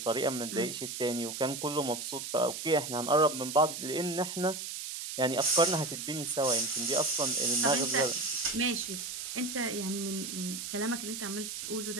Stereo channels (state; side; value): noise; right; hiss, 6 dB below the sound